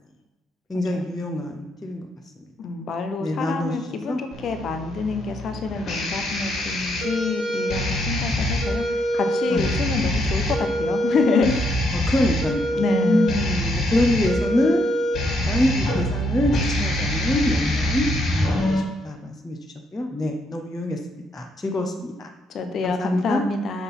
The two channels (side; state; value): both; normal; correlation 0.75